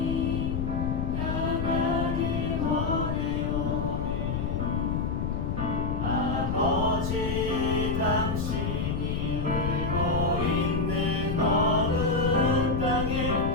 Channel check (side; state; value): left; noise; rumble, 1 dB below the sound